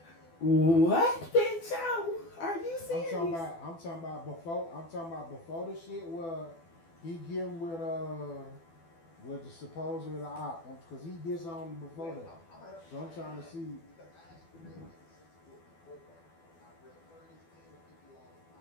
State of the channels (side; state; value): right; late; 12 ms